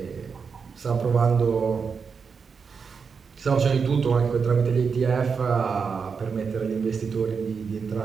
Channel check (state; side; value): quieter; left; 5.7 dB